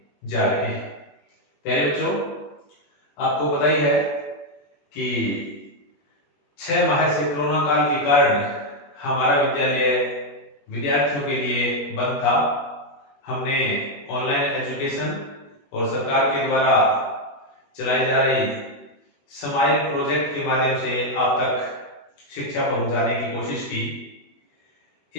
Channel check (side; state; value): right; late; 21 ms